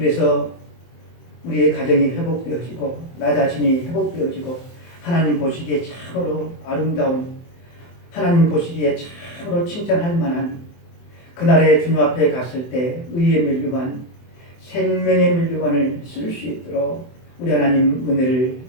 우리의 가정이 회복되어지고 나 자신이 회복되어지고 하나님 보시기에 참으로 아름다운, 하나님 보시기에 참으로 칭찬할 만한 그날의 주님 앞에 갔을 때 의의 면류관, 생명의 면류관을 쓸 수 있도록 우리 하나님 은혜를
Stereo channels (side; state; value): right; late; 23 ms